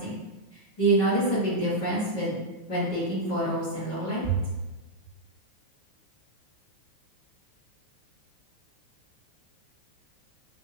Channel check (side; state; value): right; late; 9.4 ms